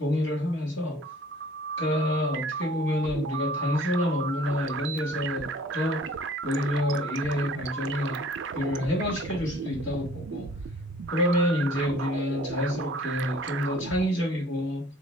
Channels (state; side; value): normal; both; correlation 0.53